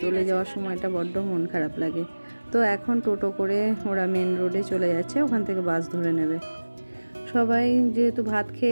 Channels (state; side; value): inverted; both; correlation -1.00